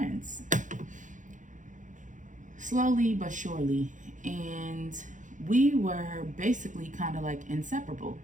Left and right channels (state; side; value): late; left; 0.37 ms